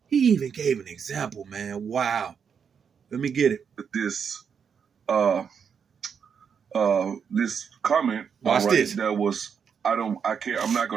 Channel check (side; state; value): left; quieter; 6.9 dB